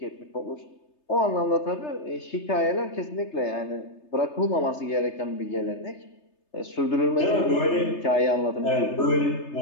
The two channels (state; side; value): late; right; 3.3 ms